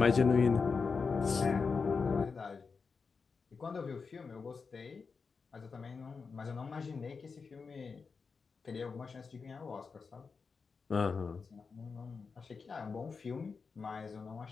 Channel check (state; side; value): quieter; right; 5.0 dB